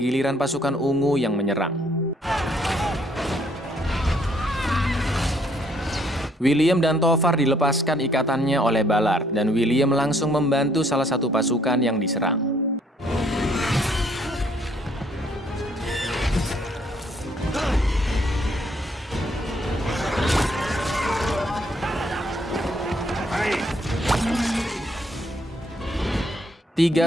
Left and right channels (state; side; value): normal; both; correlation 0.66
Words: giliran pasukan ungu yang menyerang. William dan Tovar dilepaskan ikatannya oleh Ballard, dan William langsung membantu salah satu pasukan yang diserang.